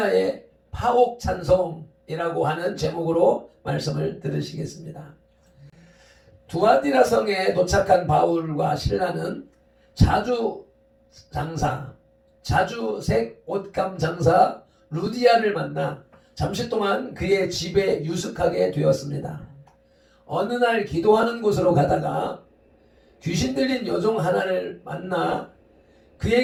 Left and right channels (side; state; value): both; identical; correlation 1.00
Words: 파옥 찬송이라고 하는 제목으로 말씀을 들으시겠습니다. 두아디라 성에 도착한 바울과 신라는 자주색 옷감 장사 루디아를 만나 잠시 동안 그의 집에 유숙하게 되었습니다. 어느 날 기도하는 곳으로 가다가 귀신 들린 여종 하나를 만나